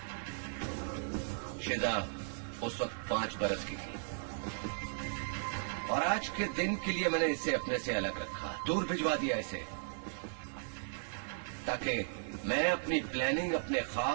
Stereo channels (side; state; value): left; silent; digital silence